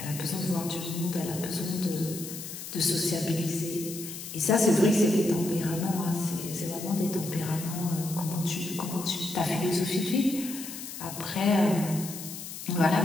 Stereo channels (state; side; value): noise; left; hiss, 10 dB below the sound